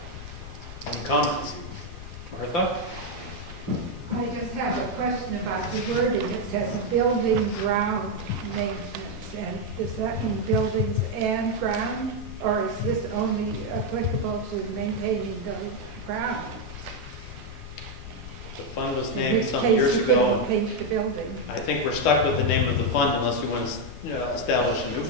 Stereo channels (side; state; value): left; noise; rumble, 12 dB below the sound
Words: Any comments? Martha? I just have a question about the wording. It says building ground maintenance, and does that mean buildings and ground? Or is this only applicable to maintaining the ground? The fund was In named which some case years you ago. couldn't paint the building. I think we're stuck with the name of the fund unless we want to establish a new